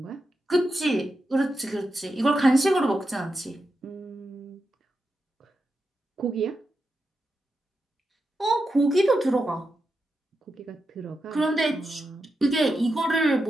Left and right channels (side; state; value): both; normal; correlation 0.88